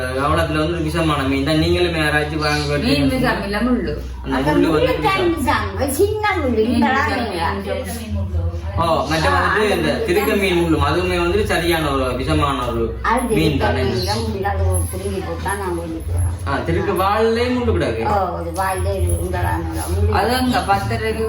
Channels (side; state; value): both; identical; correlation 1.00